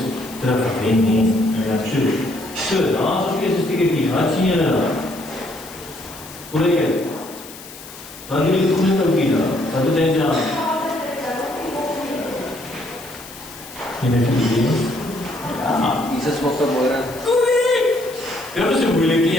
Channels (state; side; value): noise; left; hiss, 16 dB below the sound